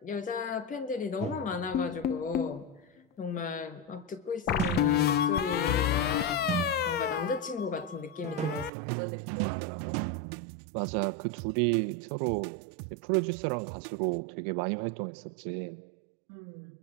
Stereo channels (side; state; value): left; drops out; at 8.7 s